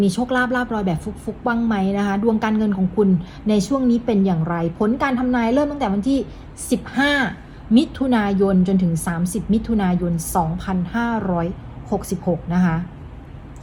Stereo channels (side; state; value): both; identical; correlation 1.00